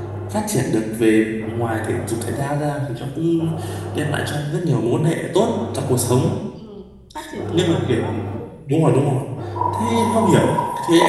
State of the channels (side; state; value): both; identical; correlation 1.00